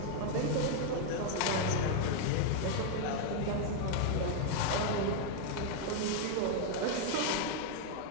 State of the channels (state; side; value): different; both; correlation 0.00